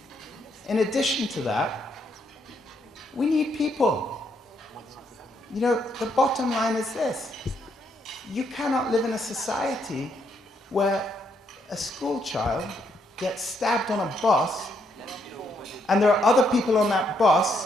In addition to that, we need people. You know, the bottom line is this. You cannot live in a society where a school child gets stabbed on a bus and there are other people on that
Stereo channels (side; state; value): both; normal; correlation 0.75